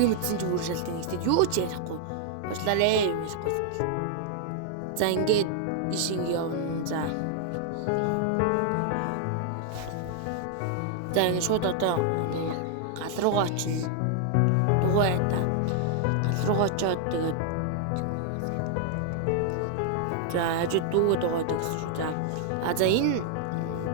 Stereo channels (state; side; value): different; both; correlation 0.00